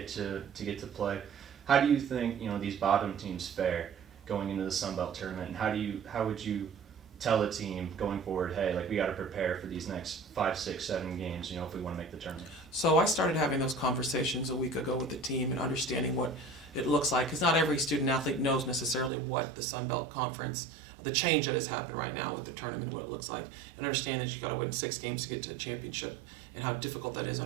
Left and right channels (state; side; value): drops out; left; at 19.1 s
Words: to play. How do you think these bottom teams fare going into the Sun Belt tournament, and how would you tell a team going forward, hey, like we got to prepare for these next 5, 6, 7 games, if we want to make the tournament? So I started having those conversations a week ago with the team and understanding what it looks like, because not every student athlete knows necessarily what the Sun Belt Conference, the change that has happened right now with the tournament, what it looks like, and understand that you got to win 6 games to get to a championship, and how difficult that is